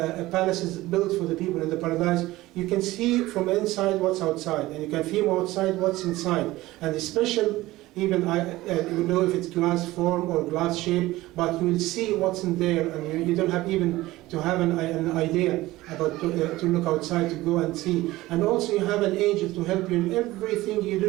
palaces built for the people in the paradise, you can see from inside what's outside, and you can feel outside what's inside. And the special, even I don't know if it's glass form or glass shape, but you will see what's in there, and you don't have even to have an idea about to look outside, to go and see. And also you have an angel to help you in everything you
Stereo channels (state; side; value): quieter; left; 17.8 dB